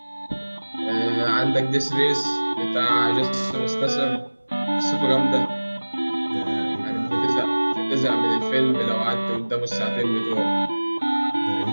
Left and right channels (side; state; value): both; inverted; correlation -1.00